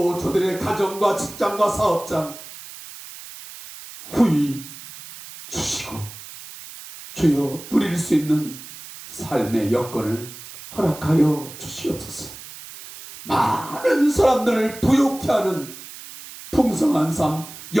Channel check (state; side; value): noise; right; hiss, 15 dB below the sound